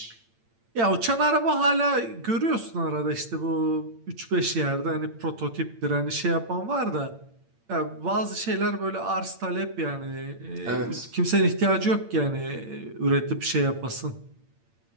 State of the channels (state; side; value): late; left; 8.8 ms